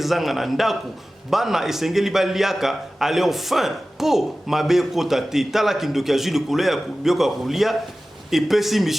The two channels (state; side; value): normal; both; correlation 0.96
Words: na ndaku bana esengeli baliaka ale enfin po mabe kota te tala kindoki azwi likolo ya biloko ya kulia epesi